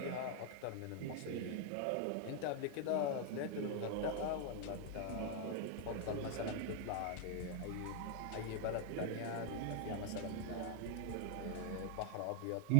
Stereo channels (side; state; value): both; different; correlation 0.00